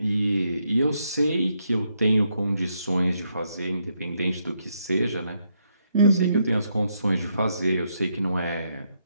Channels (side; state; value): both; inverted; correlation -0.77